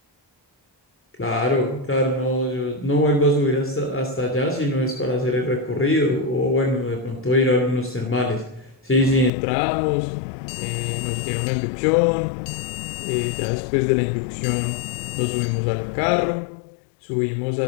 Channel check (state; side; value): drops out; right; at 9.3 s